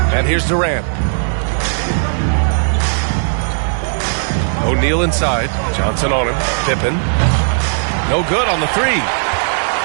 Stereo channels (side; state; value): left; silent; digital silence